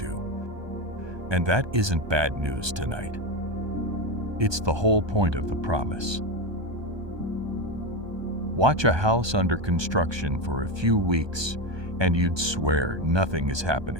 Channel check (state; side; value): late; left; 1.2 ms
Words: And that isn't bad news tonight. It's the whole point of the promise. Watch a house under construction for a few weeks, and you'd swear nothing is